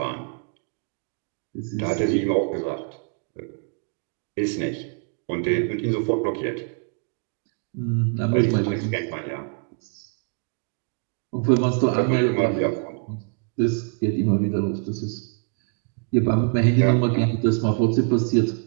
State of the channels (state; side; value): quieter; left; 39.8 dB